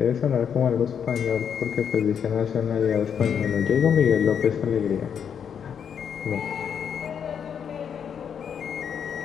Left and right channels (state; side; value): quieter; right; 7.7 dB